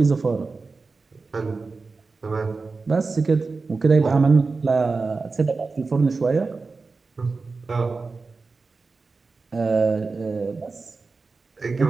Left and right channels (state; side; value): quieter; left; 4.1 dB